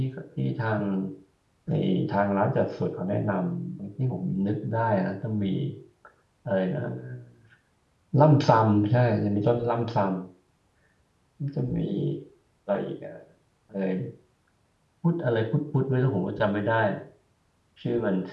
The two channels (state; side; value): identical; both; correlation 1.00